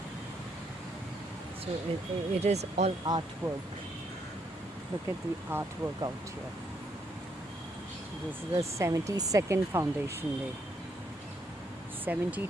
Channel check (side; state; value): both; normal; correlation 0.74